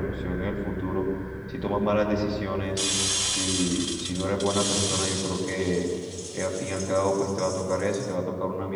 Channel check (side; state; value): both; identical; correlation 1.00